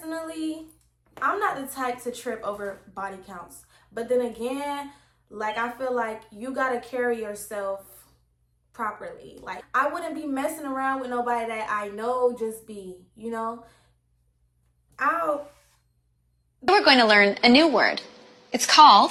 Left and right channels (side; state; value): both; identical; correlation 1.00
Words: I'm not the type to trip over body counts. But then again, I feel like you gotta carry yourself properly. Like, I wouldn't be messing around with nobody that I know just be, We're going to learn a new word. It's